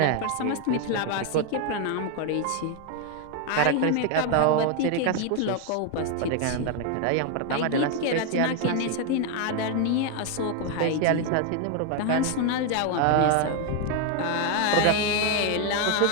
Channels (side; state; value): both; different; correlation 0.01